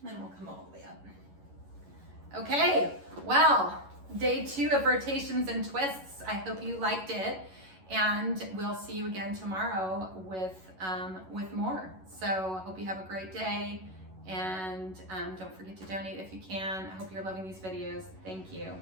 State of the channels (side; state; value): left; late; 11 ms